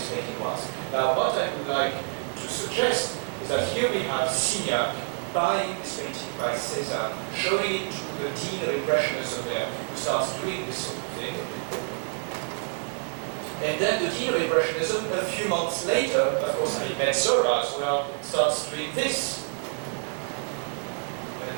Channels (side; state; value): left; silent; digital silence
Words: painting was. Now, what I would like to suggest is that here we have Signac buying this painting by Cézanne, showing it to the Dean of Impressionism there, who starts doing this sort of thing. And then the Dean of Impressionism, a few months later, of course, having met Zola as well, starts doing this. And